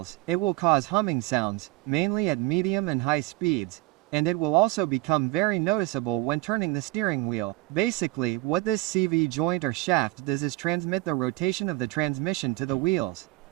it will cause humming sounds, mainly at medium and high speeds, and it will also become very noticeable when turning the steering wheel. Basically, what this CV joint or shaft does is transmit the rotation of the transmission to the wheels,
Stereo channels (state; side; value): quieter; left; 20.2 dB